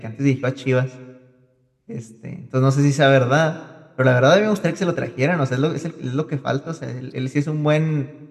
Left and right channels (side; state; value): both; identical; correlation 1.00